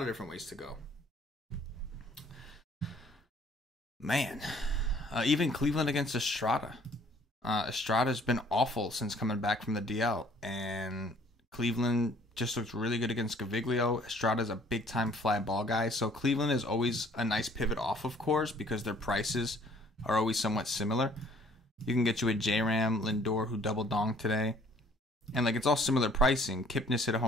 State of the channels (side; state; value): both; normal; correlation 0.58